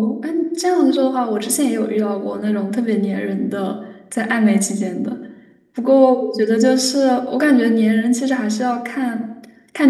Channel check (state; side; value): identical; both; correlation 1.00